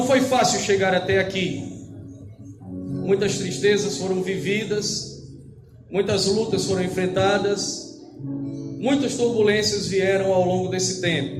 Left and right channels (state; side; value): identical; both; correlation 1.00